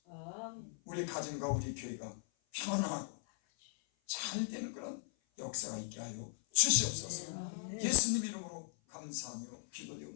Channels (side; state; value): right; silent; 52 dB below the other